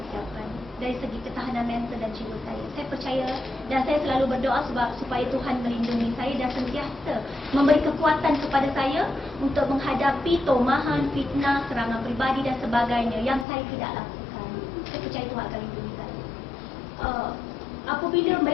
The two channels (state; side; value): drops out; right; at 13.5 s